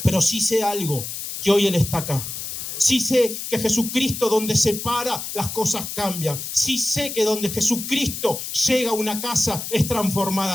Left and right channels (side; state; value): left; noise; hiss, 7 dB below the sound